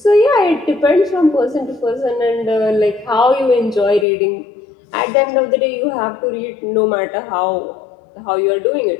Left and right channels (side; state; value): right; drops out; at 4.0 s